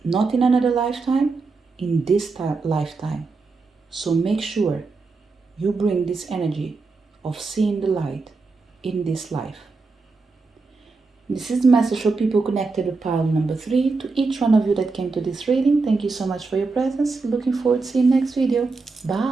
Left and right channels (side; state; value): left; quieter; 4.1 dB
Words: Not in another lifetime, in this lifetime. So make sure you bring this energy of seeing the light in this life. This is the message for people connected with pile number 3. To each one of you that came to this reading, thank you so much for your presence. Looking forward to seeing you next video.